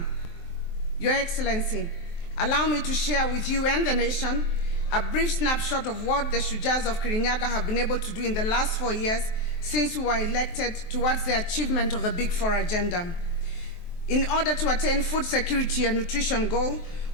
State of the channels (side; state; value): right; late; 23 ms